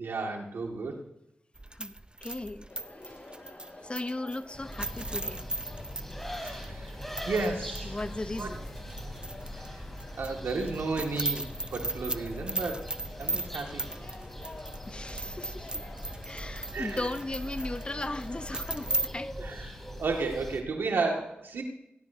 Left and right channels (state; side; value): normal; both; correlation 0.56